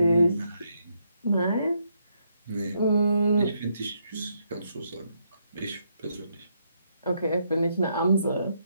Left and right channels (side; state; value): both; inverted; correlation -0.76